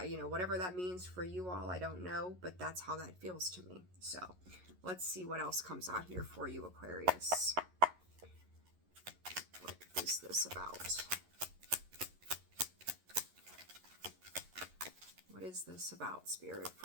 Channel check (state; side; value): late; left; 11 ms